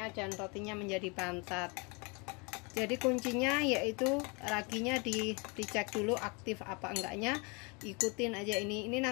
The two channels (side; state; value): right; quieter; 30.7 dB